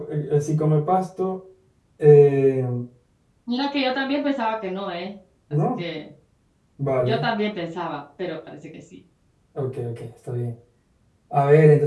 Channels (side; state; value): both; identical; correlation 1.00